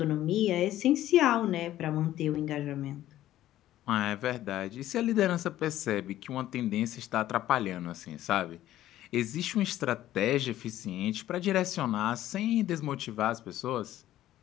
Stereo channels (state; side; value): quieter; right; 13.6 dB